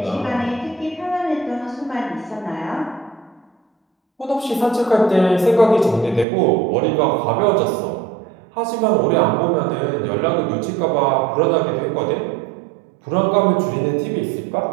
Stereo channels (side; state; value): left; drops out; at 6.2 s